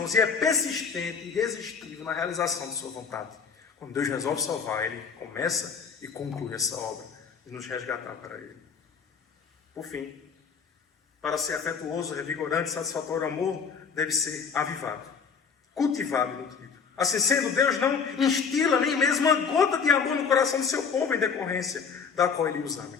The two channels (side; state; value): right; quieter; 6.0 dB